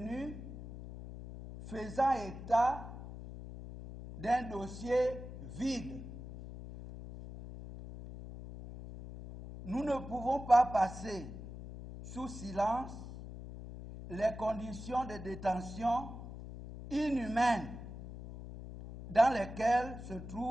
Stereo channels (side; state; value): left; noise; hum, 11 dB below the sound